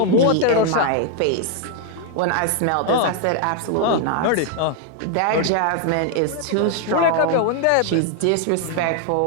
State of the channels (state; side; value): different; both; correlation 0.00